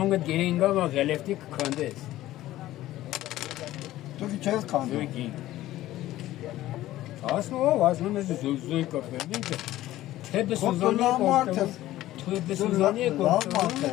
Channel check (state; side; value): quieter; right; 15.1 dB